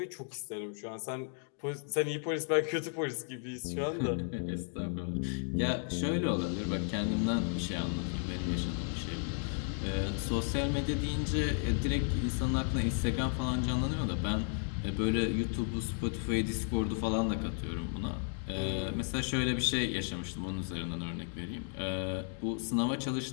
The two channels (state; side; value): silent; right; 55 dB below the other